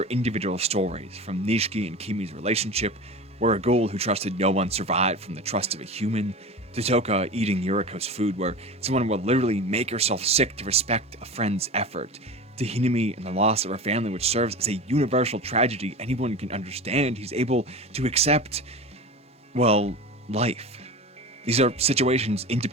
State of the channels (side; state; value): both; normal; correlation 0.31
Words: individual stories, from Nishiki and Kimi's relationship, where a ghoul who trusted no one survived from the trust of a human, to Toka eating Yuriko's food, where someone will literally make herself sick to respect a friend's effort, to Hinami and the loss of her family, which serves as a universal tragedy anyone can understand, he's able to accept, well, life. These are situations